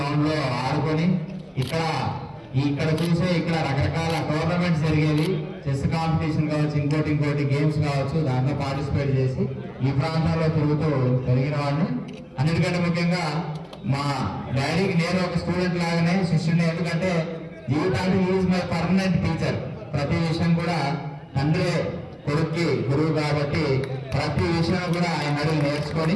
లో ఆడుకొని ఇక్కడ చూసే ఇక్కడ రకరకాల టోర్నమెంట్స్ జరిగేవి. చెస్ కాంపిటీషన్ కావచ్చు, ఇంకోటి గేమ్స్ కావచ్చు, దాంట్లో పార్టిసిపేట్ చేసి ఈ ప్రాంతంలో తిరుగుతూ పెరిగిన వాడిని. అన్నిటికంటే ముఖ్యంగా మా డాడీకి నేను ఒక స్టూడెంట్ లాగానే శిష్యుడిని. ఎందుకంటే జీవితానికి ఈజ్ మై పర్మనెంట్ టీచర్. ప్రతి విషయం కూడా తండ్రి కొడుక్కి గురువు కాబట్టి ప్రతి విషయం కూడా ఆయన అడిగి నేర్చుకొని.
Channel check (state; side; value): identical; both; correlation 1.00